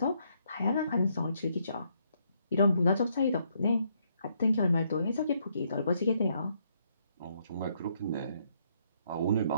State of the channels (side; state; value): both; inverted; correlation -0.73